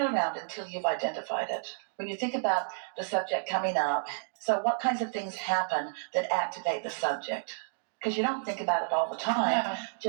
around until you've identified it. When you think about the subject coming up, so what kinds of things happen that activate the subject? Because you don't think about it all the time, No.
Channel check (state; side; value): silent; left; digital silence